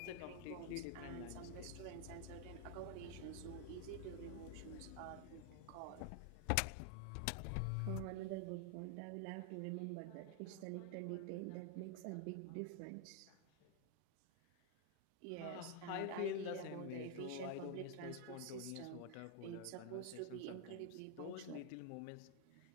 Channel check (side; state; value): both; different; correlation 0.00